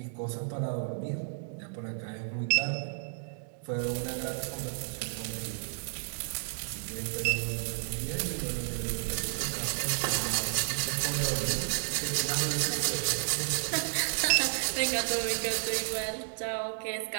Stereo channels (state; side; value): silent; left; digital silence